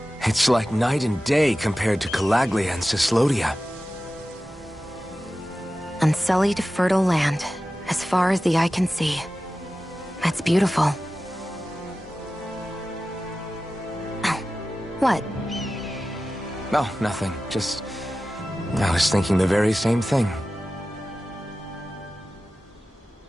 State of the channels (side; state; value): both; normal; correlation 0.95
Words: It's like night and day compared to Calaglia and Cyslodia. Unsullied, fertile land, as far as the eye can see. That's beautiful. Oh, what? Oh, nothing. Just... I was thinking the very same thing.